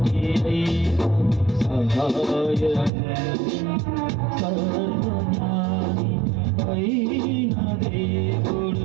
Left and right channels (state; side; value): drops out; left; at 2.9 s